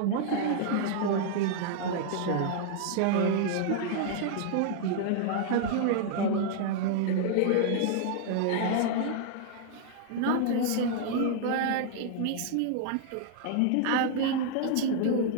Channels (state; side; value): different; both; correlation -0.01